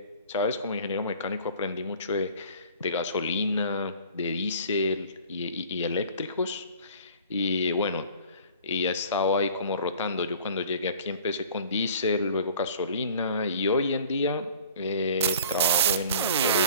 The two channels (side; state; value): both; inverted; correlation -0.47